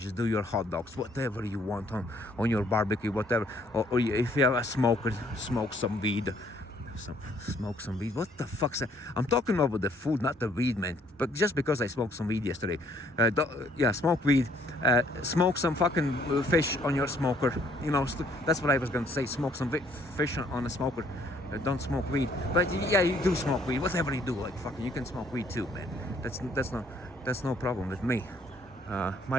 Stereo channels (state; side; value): normal; both; correlation 0.64